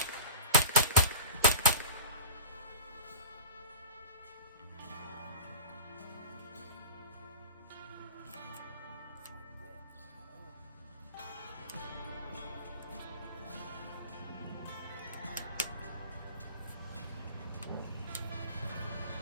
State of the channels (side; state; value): both; inverted; correlation -0.33